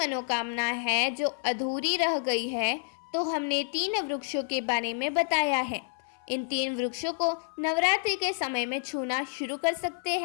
है जो अधूरी रह गई है तो हमने 3 वृक्षों के बारे में बताया है। इन 3 वृक्षों को नवरात्रि के समय में छूना शुरू कर सकते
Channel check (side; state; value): right; silent; 56 dB below the other